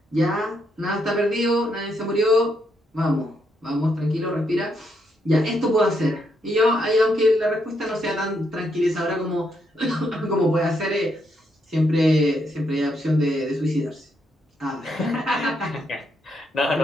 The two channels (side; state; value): both; normal; correlation 0.77